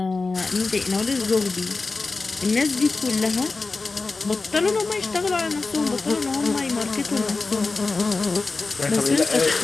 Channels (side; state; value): right; quieter; 3.8 dB